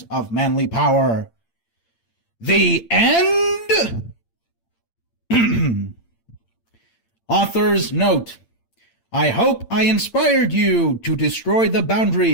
of manly power. The end? Author's note. I hope I inspired you to destroy the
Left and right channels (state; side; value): late; right; 8.8 ms